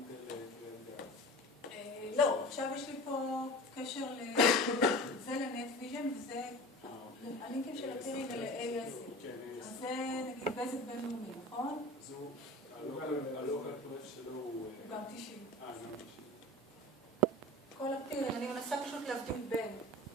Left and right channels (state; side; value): normal; both; correlation 0.36